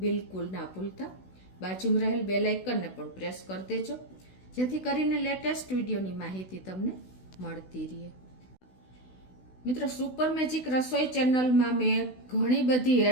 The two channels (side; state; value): right; late; 16 ms